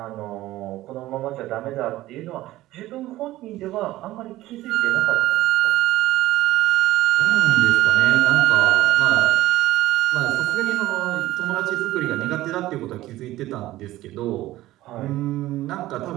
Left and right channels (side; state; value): left; quieter; 16.2 dB